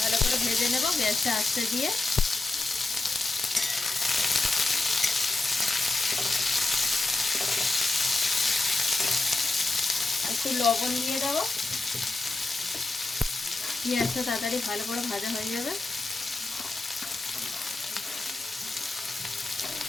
करे भेजे नेब गैसटा आस्ते दिए। एकटु लवण दिए देब। पेंयाजटा ताड़ाताड़ी भालो करे भाजा हये जाबे।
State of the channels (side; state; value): right; quieter; 3.1 dB